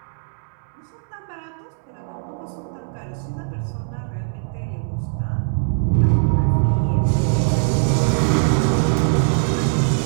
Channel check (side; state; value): left; silent; digital silence